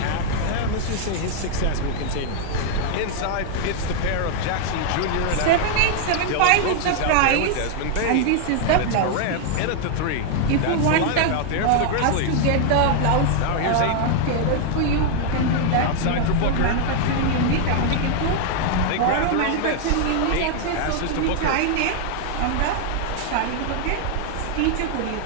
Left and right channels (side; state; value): both; different; correlation 0.00